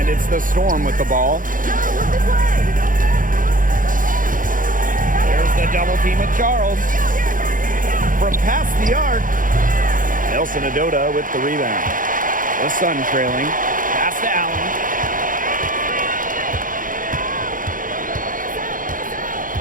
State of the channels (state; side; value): late; left; 0.39 ms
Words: it's the Storm with the ball. There's the double team with Charles. From past the arc. Nelson Adota with the rebound. The Sun trailing. Pass to Allen.